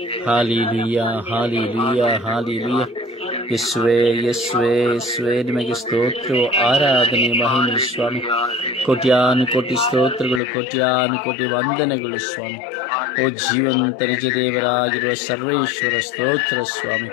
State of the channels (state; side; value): drops out; right; at 10.4 s